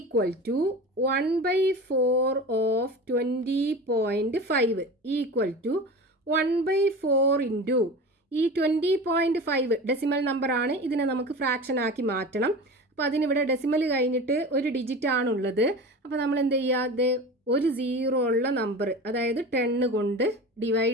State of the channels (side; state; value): both; normal; correlation 0.32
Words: to 1/4 of 20.5 equal to 1/4 into ഈ 20.5 ഡെസിമൽ നമ്പർ ആണ്. ഇതിനെ നമുക്ക് ഫ്രാക്ഷൻ ആക്കി മാറ്റണം. അപ്പോൾ അതിനിവിടെ ഡെസിമൽ കഴിഞ്ഞിട്ട് ഒരു ഡിജിറ്റ് ആണുള്ളത്. അപ്പോൾ നമ്മൾ എന്ത് ചെയ്യുക, ഒരു 0 ഉള്ള നമ്പർ അതായത് 10 കൊണ്ട്